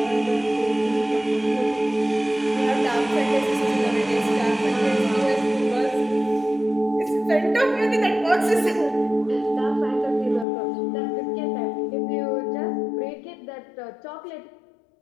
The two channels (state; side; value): drops out; right; at 10.5 s